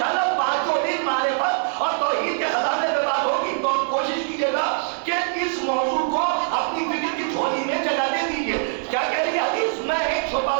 5 دن معرفت اور توحید کے خزانے پہ بات ہوگی. تو کوشش کیجیے گا کہ اس موضوع کو اپنی فکر کی جھولی میں جگہ دے دیجیے. کیا کہہ رہی ہے حدیث؟ میں ایک چھپا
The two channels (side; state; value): left; silent; 63 dB below the other